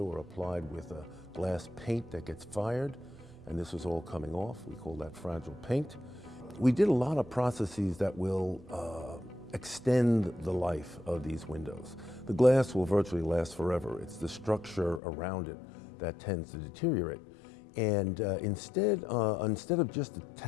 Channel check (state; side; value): drops out; right; at 15.0 s